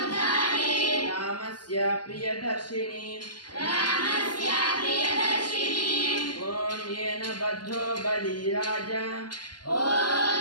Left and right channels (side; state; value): right; late; 0.71 ms